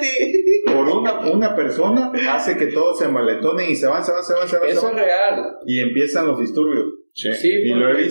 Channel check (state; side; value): inverted; both; correlation -1.00